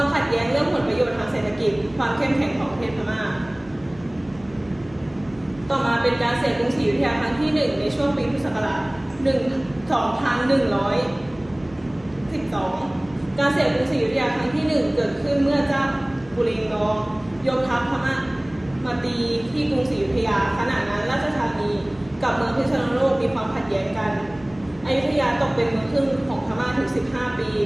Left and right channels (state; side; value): noise; right; hum, 23 dB below the sound